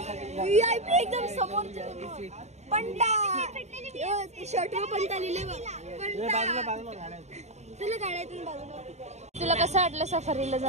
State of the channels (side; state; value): left; late; 0.32 ms